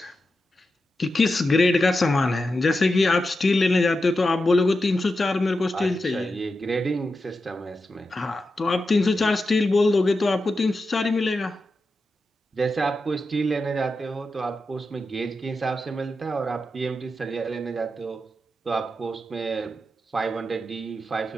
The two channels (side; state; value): both; normal; correlation 0.89